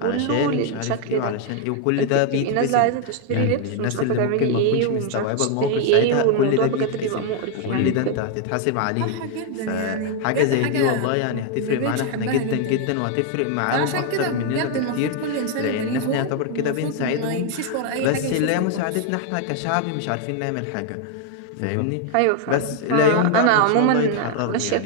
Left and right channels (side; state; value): both; different; correlation 0.00